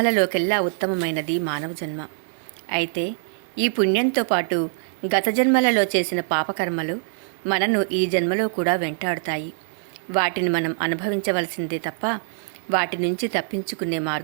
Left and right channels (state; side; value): silent; left; 61 dB below the other